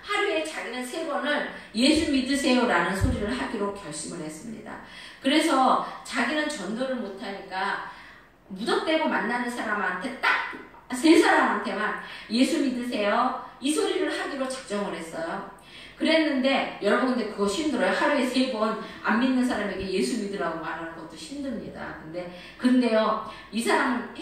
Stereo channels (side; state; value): both; identical; correlation 1.00